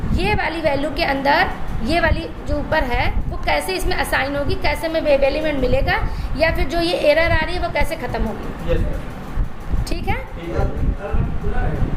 ये वाली वैल्यू के अंदर ये वाली जो ऊपर है वो कैसे इसमें असाइन होगी, कैसे में वेब एलिमेंट मिलेगा, या फिर जो ये एरर आ रही है वो कैसे ख़त्म होगी। ठीक है।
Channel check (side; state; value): both; identical; correlation 1.00